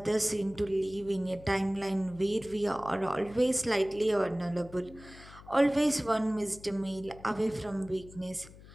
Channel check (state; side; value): noise; left; hum, 19 dB below the sound